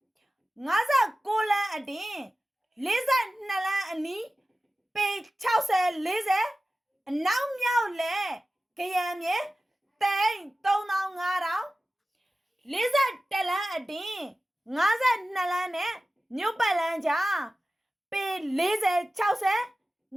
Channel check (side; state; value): both; normal; correlation 0.96